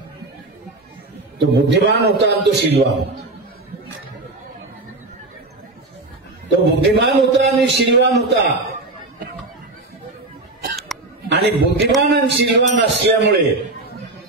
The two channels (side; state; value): left; quieter; 3.0 dB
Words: तो बुद्धिमान होता आणि तो शीलवान होता. तो बुद्धिमान होता आणि शीलवान होता. आणि बुद्धिमान आणि शीलवान असल्यामुळे